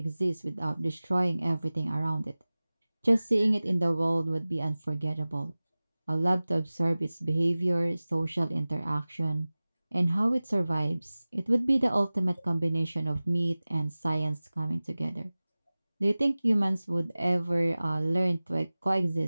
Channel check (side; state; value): both; inverted; correlation -0.98